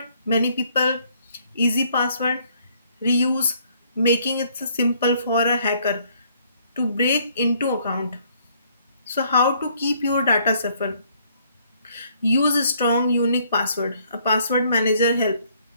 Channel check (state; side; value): inverted; both; correlation -0.65